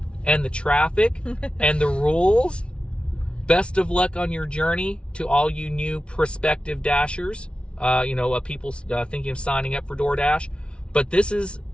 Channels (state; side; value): late; right; 0.058 ms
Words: and the traffic and the rules. Best of luck on your journey to all you new prospective dashers. People thinking of signing up for DoorDash. But this is